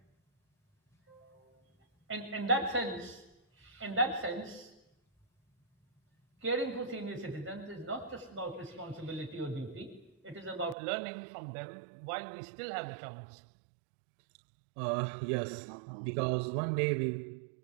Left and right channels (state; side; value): drops out; left; at 10.8 s